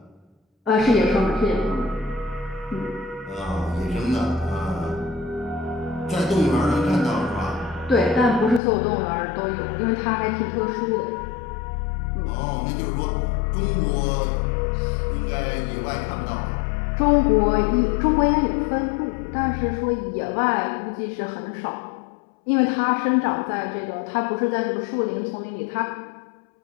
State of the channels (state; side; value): drops out; right; at 8.6 s